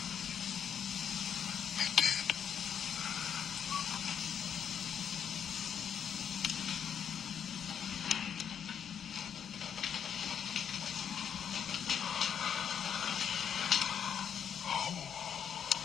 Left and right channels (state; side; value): quieter; right; 8.2 dB